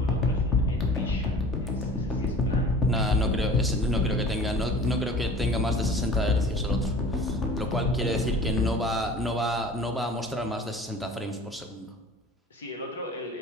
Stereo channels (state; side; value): normal; both; correlation 0.43